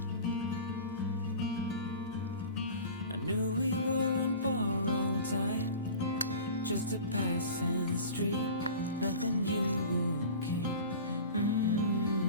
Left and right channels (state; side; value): inverted; both; correlation -0.38